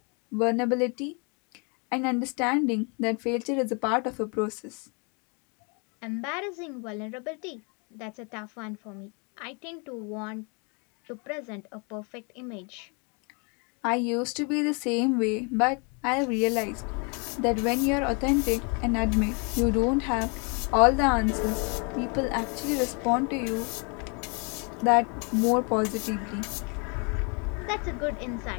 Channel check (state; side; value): quieter; right; 34.3 dB